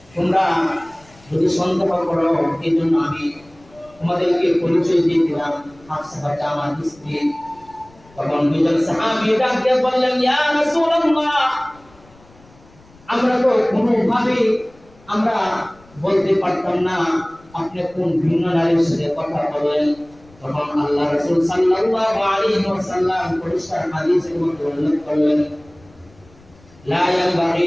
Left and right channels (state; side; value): noise; left; rumble, 27 dB below the sound